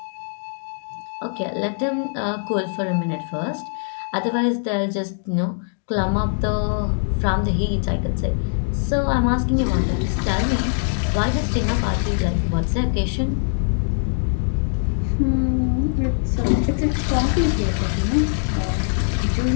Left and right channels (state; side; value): silent; right; digital silence